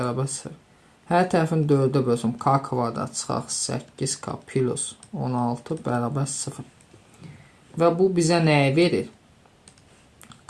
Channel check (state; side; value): identical; both; correlation 1.00